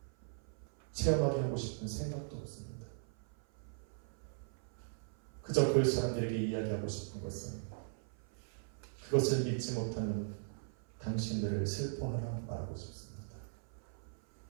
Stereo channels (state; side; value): silent; left; 52 dB below the other